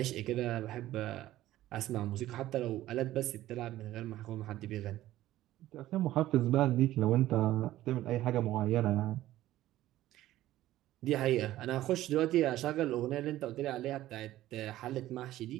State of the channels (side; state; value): left; quieter; 14.7 dB